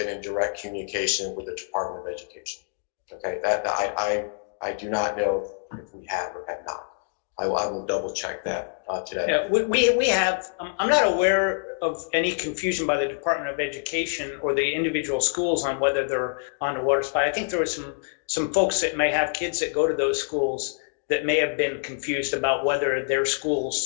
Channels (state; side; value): silent; right; digital silence